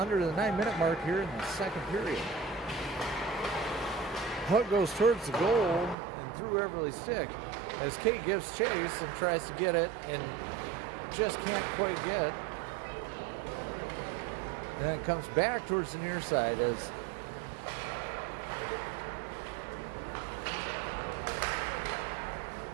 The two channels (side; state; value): left; drops out; at 6.0 s